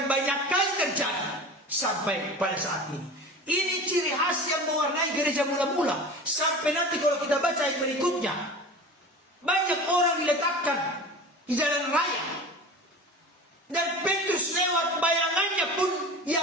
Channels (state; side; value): normal; both; correlation 0.35